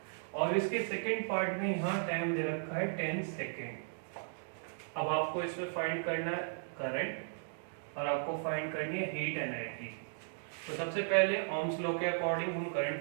और इसके सेकंड पार्ट में यहाँ टाइम दे रखा है 10 सेकेंड। अब आपको इसमें फाइंड करना है करंट और आपको फाइंड करनी है हीट एनर्जी। तो सबसे पहले ओम्स लॉ के अकॉर्डिंग हम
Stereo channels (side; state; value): left; silent; digital silence